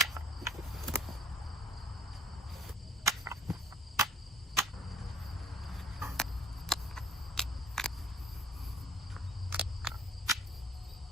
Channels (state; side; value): normal; both; correlation 0.55